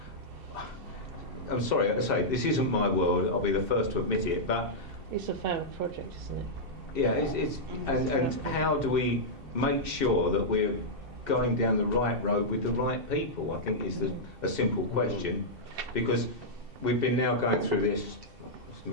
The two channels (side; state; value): left; late; 2.7 ms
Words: I'm sorry, I say this isn't my world. I'll be the first to admit it, but it's a failed project, isn't it? Yeah, and how do we make sure that we're going down the right road with the right people? I think is a simple question, because we've been now going through this.